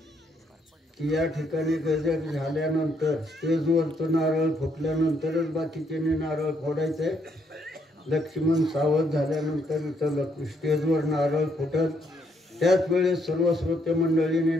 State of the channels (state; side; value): normal; both; correlation 0.73